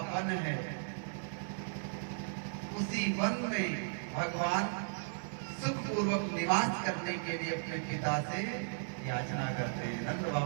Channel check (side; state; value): left; silent; digital silence